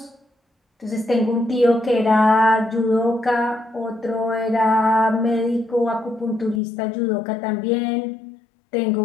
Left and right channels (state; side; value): drops out; right; at 6.6 s